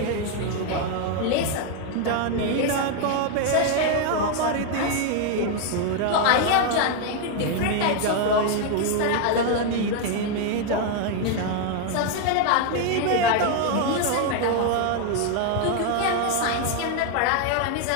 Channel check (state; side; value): different; both; correlation 0.01